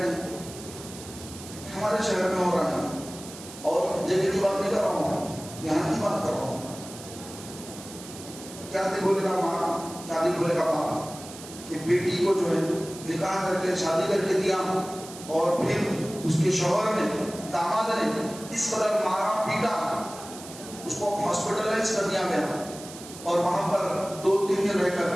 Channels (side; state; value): right; noise; hiss, 15 dB below the sound